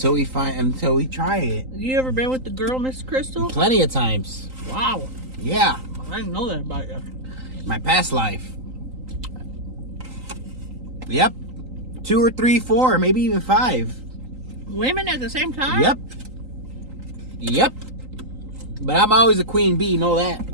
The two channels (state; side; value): late; left; 3.8 ms